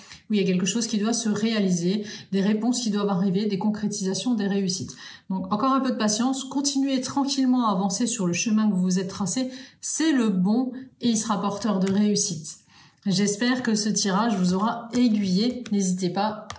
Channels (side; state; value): both; identical; correlation 1.00